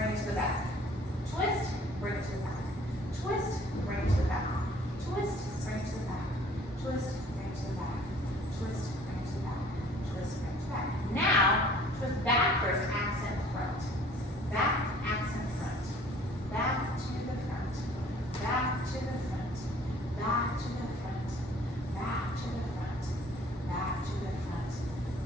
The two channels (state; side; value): normal; both; correlation 0.53